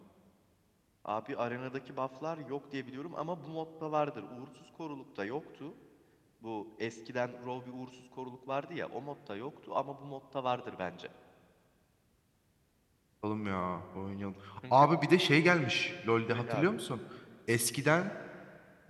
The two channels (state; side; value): identical; both; correlation 1.00